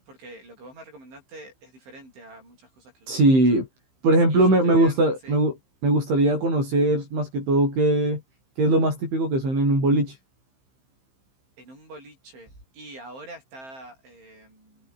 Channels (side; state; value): left; late; 15 ms